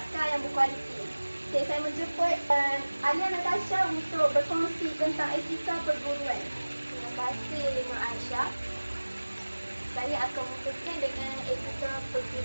yang berkualiti. Okey, saya menjemput Alia Natasha untuk berkongsi tentang etika perguruan. Terima kasih Nur Aisyah. Saya akan mulakan dengan etika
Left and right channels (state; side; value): inverted; both; correlation -1.00